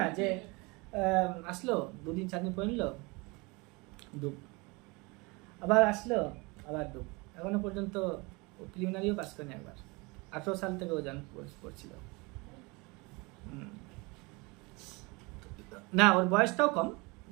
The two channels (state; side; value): quieter; left; 26.4 dB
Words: যে আসলো 2-4 দিন পরে নিল, ডুব, আবার আসলো, আবার ডুব। এখনো পর্যন্ত প্রিলিমিনারিও পাস করেনি একবার। 18 সাল থেকে ও পড়ছিল। না, ওর বয়সটাও কম,